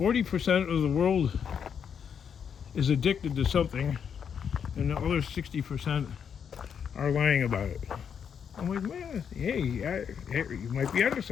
of the world is addicted to something, and the other 60% are lying about it. I'm like, man, hey, you might be onto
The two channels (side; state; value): right; quieter; 7.5 dB